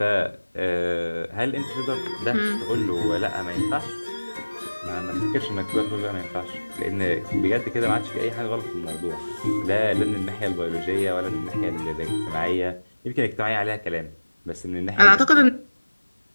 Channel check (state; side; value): inverted; both; correlation -1.00